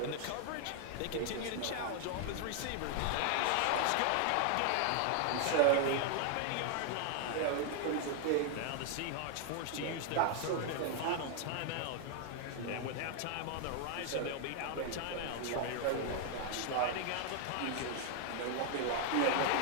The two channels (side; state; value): both; different; correlation 0.00